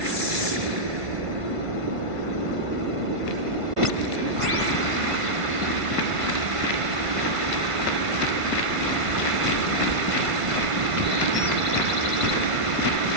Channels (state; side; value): late; left; 1.5 ms